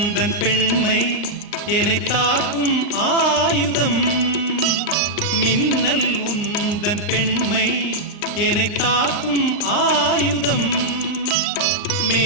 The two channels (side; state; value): right; late; 39 ms